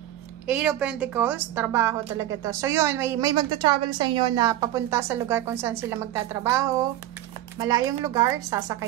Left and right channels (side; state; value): left; quieter; 13.6 dB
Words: 8 of Pentacles, trabaho talaga to. So yun, may magta-travel sa inyo na papunta sa lugar kung saan sila magtatrabaho. Malayong lugar,